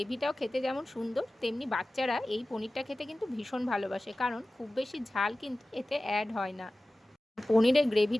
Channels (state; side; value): normal; both; correlation 0.96